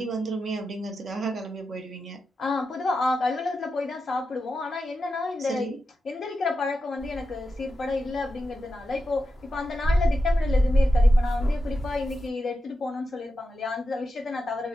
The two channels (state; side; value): normal; both; correlation 0.89